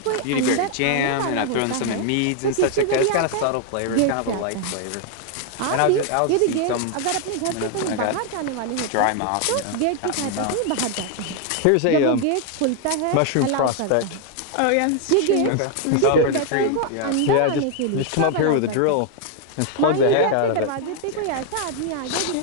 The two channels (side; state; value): both; different; correlation 0.00